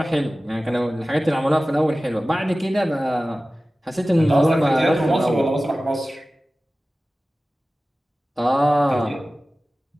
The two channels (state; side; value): normal; both; correlation 0.96